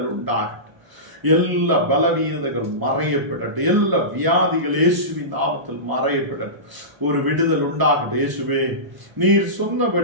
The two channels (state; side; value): late; left; 1.0 ms